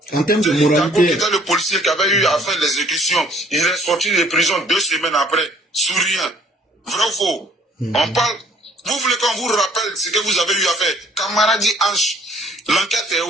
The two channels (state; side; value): normal; both; correlation 0.59